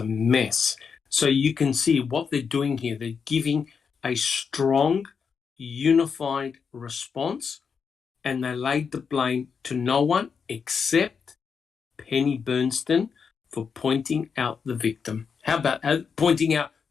mess. So you can see what they're doing here. They're giving a strong, unified response, and they laid the blame to no one except Penny Bernstein for pointing out the victim. How about pointing out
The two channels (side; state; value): right; quieter; 6.1 dB